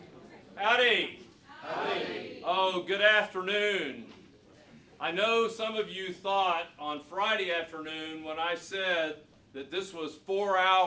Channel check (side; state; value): both; identical; correlation 1.00